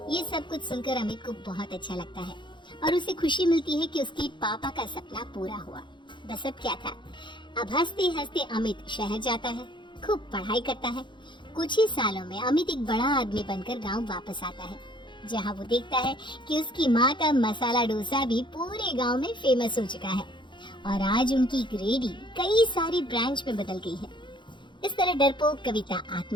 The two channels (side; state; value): right; late; 0.23 ms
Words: ये सब कुछ सुनकर अमित को बहुत अच्छा लगता है और उसे खुशी मिलती है कि उसके पापा का सपना पूरा हुआ। बस अब क्या था, अब हंसते हंसते अमित शहर जाता है, खूब पढ़ाई करता है। कुछ ही सालों में अमित एक बड़ा आदमी बनकर गांव वापस आता है, जहां वो देखता है कि उसकी माँ का मसाला डोसा भी पूरे गांव में फेमस हो चुका है और आज उनकी रेहड़ी कई सारी ब्रांच में बदल गई है। इस तरह डरपोक कविता